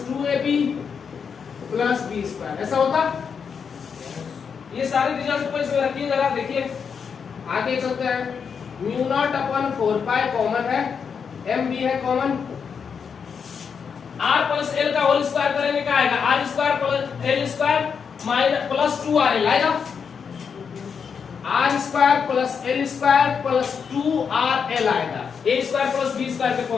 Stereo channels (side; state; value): right; quieter; 6.4 dB